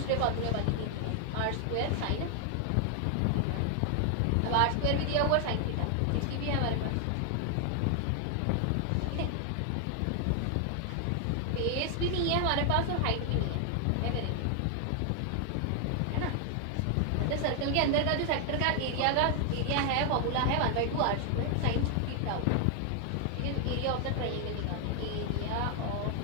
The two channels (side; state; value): both; different; correlation 0.00